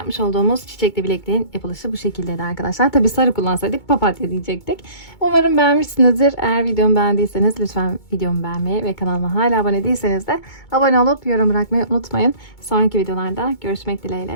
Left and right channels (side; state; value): right; late; 2.2 ms